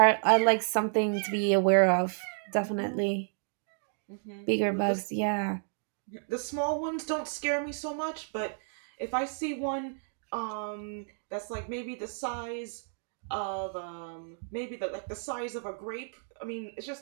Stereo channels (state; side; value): silent; left; 57 dB below the other